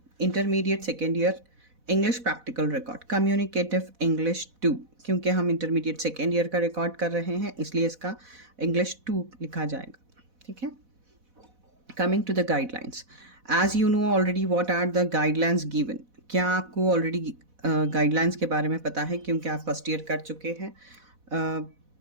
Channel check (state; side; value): late; left; 4.1 ms